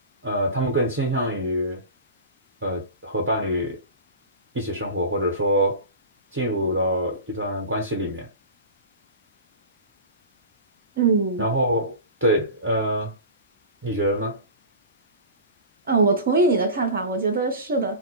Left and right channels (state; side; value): inverted; both; correlation -0.32